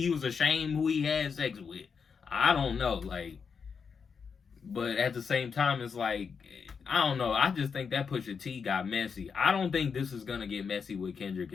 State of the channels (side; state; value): right; quieter; 6.0 dB